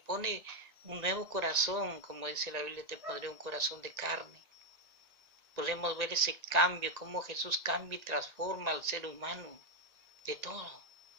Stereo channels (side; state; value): left; late; 1.8 ms